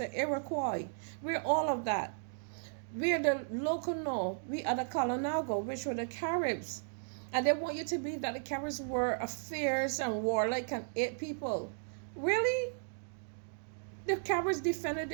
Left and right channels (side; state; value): left; silent; digital silence